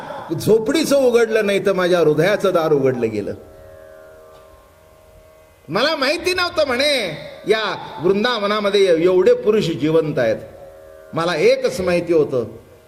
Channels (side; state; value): both; identical; correlation 1.00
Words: झोपडीचं उघडलं नाही तर माझ्या हृदयाचं दार उघडलं गेलं. मला माहिती नव्हतं म्हणे या वृंदावनामध्ये एवढे पुरुष जिवंत आहेत. मला एकच माहिती होतं